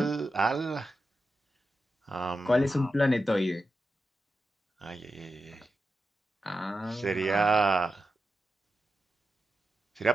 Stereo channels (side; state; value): both; normal; correlation 0.90